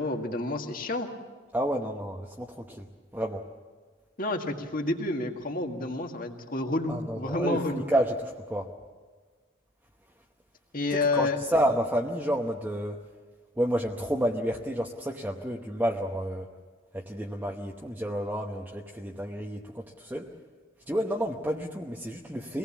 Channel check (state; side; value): normal; both; correlation 0.61